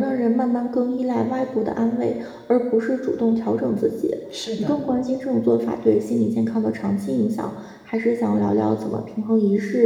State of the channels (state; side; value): identical; both; correlation 1.00